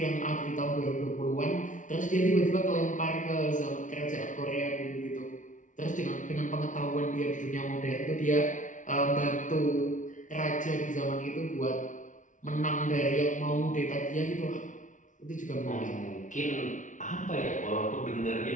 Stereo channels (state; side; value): late; right; 0.37 ms